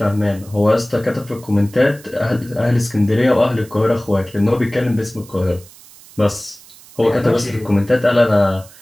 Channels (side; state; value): right; noise; hiss, 22 dB below the sound